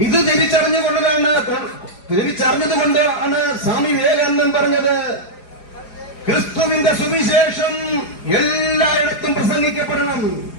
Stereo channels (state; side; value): late; right; 4.9 ms